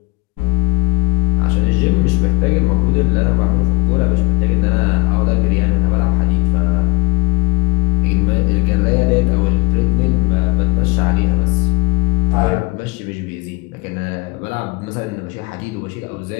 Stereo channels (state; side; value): quieter; right; 27.0 dB